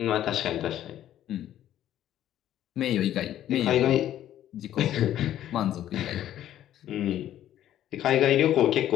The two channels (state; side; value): quieter; right; 11.9 dB